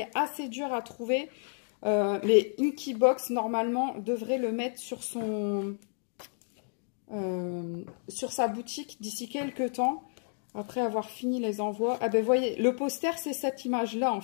assez dur à trouver. Mais Inkybox, normalement, devrait le mettre sur sa boutique d'ici quelques temps. Après avoir fini les envois. Ah ben, voyez, le poster, c'est cette image-là, en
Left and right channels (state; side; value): silent; right; 57 dB below the other